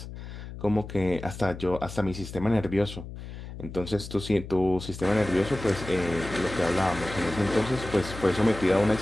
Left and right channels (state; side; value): noise; left; hum, 11 dB below the sound